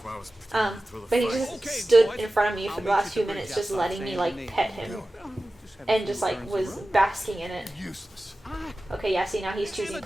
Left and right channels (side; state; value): both; normal; correlation 0.95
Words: But he just stood in front of me for the last few minutes just letting me like pet him. And just like was basking in it. Useless. Okay, yeah, see now he's choosing